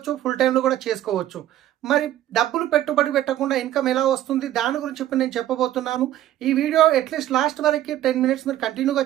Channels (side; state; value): left; quieter; 12.9 dB